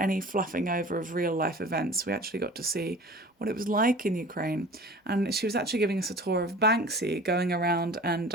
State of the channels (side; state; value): both; normal; correlation 0.42